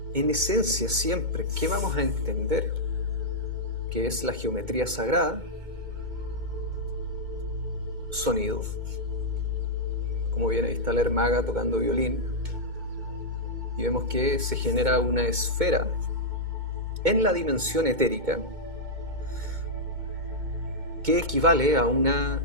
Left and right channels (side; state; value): left; late; 2.2 ms